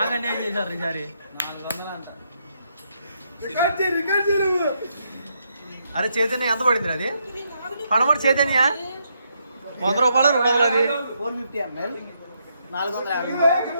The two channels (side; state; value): both; inverted; correlation -0.77